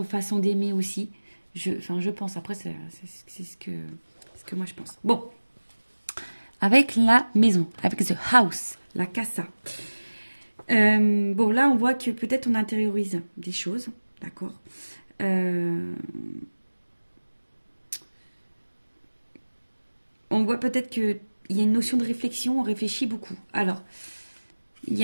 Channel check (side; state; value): both; inverted; correlation -1.00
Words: façons d'aimer aussi. Enfin, je pense. Après, c'est ce que moi je pense. Bon, avec la maison, avec the house, la casa. Bon, là, on voit que peut-être on intériorise des choses, d'accord. Euh, on voit peut-être qu'il y a une notion de réflexion, on réfléchit beaucoup. Alors,